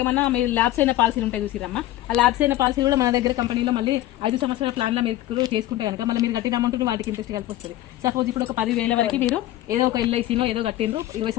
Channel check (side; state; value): right; quieter; 14.9 dB